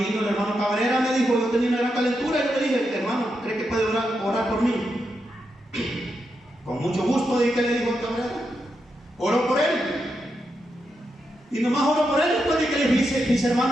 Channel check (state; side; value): normal; both; correlation 0.85